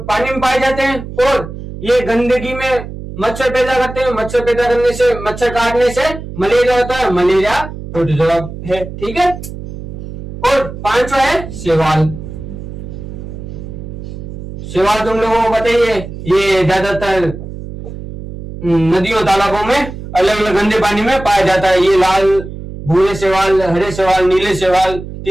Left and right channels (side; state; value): right; noise; hum, 10 dB below the sound